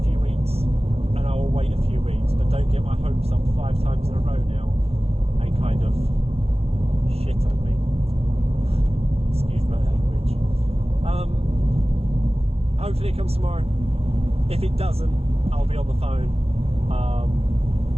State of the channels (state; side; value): late; left; 0.29 ms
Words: few weeks, and I will wait a few weeks, but don't get my hopes up 5 times in a row now and kind of shit on me. Excuse my language. hopefully it comes tomorrow. If it doesn't, I'll be on the phone.